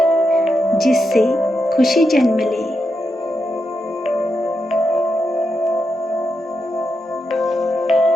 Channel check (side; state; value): both; normal; correlation 0.85